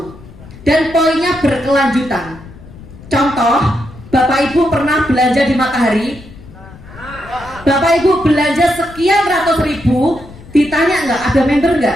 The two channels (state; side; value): noise; left; rumble, 18 dB below the sound